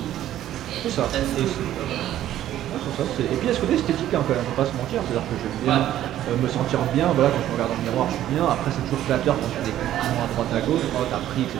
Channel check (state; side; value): quieter; left; 12.5 dB